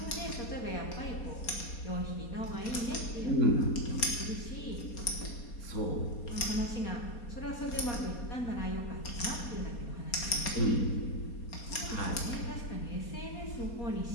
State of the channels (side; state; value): right; late; 4.2 ms